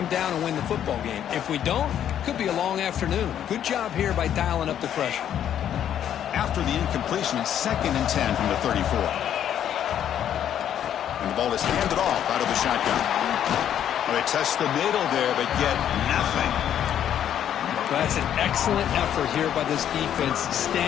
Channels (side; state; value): right; quieter; 10.0 dB